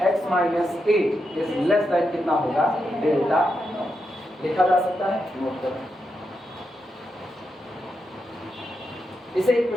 x माइनस a इज लेस देन कितना होगा, डेल्टा। लिखा जा सकता है, नोट करो इसे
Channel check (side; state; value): both; normal; correlation 0.85